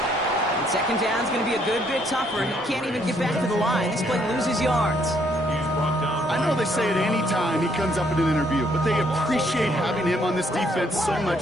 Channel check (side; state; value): both; normal; correlation 0.69